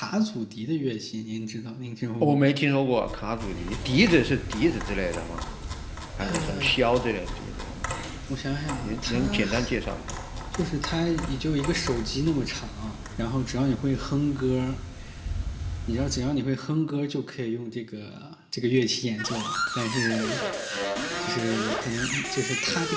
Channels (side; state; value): both; identical; correlation 1.00